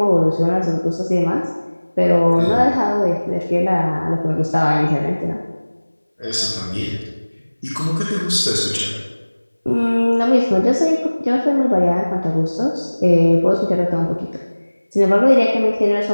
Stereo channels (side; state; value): both; inverted; correlation -1.00